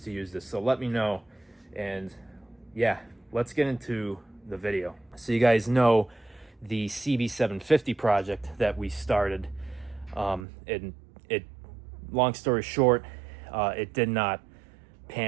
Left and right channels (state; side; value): drops out; left; at 10.5 s